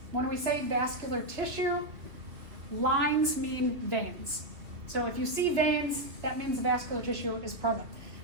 when we say vascular tissue, lines mean veins. So if you see veins, that means the vascular tissue is present.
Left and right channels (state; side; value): late; left; 2.6 ms